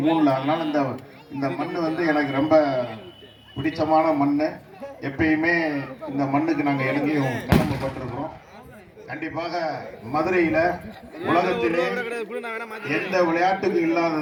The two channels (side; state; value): both; identical; correlation 1.00